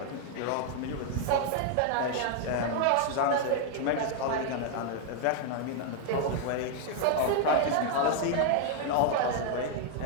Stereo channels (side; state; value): both; different; correlation 0.00